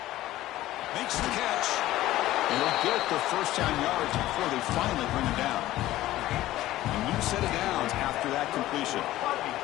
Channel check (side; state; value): right; quieter; 15.4 dB